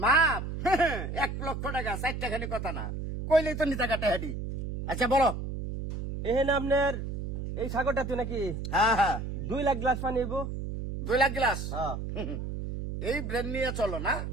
মাপ 1 লক্ষ টাকা 4 টাকানি কথা না, কইলেই তো নিতা কাটা হাডি। আচ্ছা বলো। এহেন আপনার এই সাগরটাতে নাকি হ্যাঁ হ্যাঁ 2 লাখ গ্লাস পানি হইব? 2 লাখ গ্লাস। হ্যাঁ এই ব্রেন নিয়ে চলো না,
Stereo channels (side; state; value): right; noise; hum, 5 dB below the sound